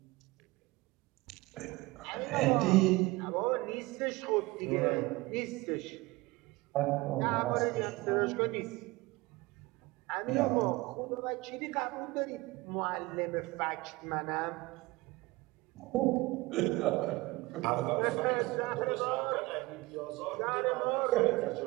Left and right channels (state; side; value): quieter; left; 21.6 dB